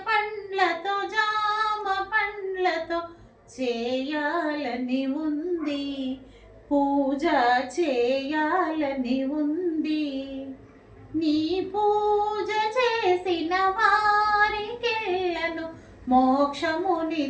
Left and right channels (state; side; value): identical; both; correlation 1.00